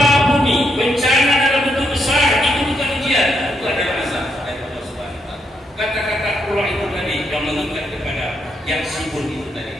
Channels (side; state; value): both; normal; correlation 0.78